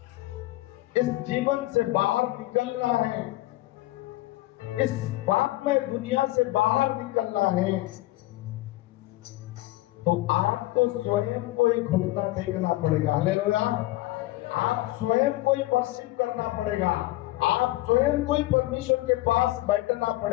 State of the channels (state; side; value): quieter; right; 18.0 dB